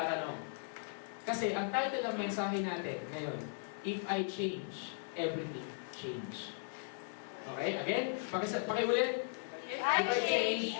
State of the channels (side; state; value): right; silent; 53 dB below the other